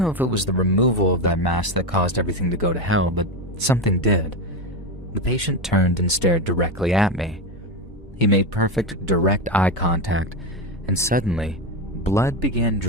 if it was the removal of that mask that caused everything to go to hell, but something did. The patient turned and stared directly at me. He made perfect, direct eye contact, and suddenly, blood began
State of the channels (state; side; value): normal; both; correlation 0.14